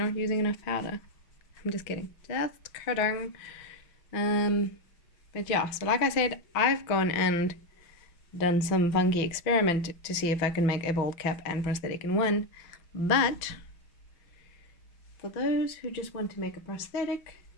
not using enough powder. I'm just kidding. Just kidding. But yeah, so like I said, I've gone and done some funky experiment to see if I can make a bald cap and prosthetic in one. But for those who just want to make a prosthetic,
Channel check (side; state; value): right; late; 6.2 ms